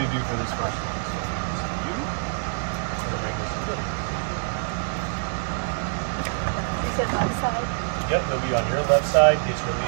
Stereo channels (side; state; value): left; silent; digital silence